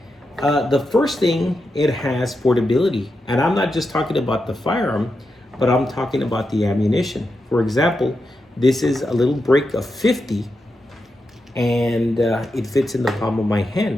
The first thing, it has portability. And I'm not just talking about the firearm, but I'm talking about the ammunition. For example, this is a little break of 50, and it fits in the palm of my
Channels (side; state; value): both; normal; correlation 0.87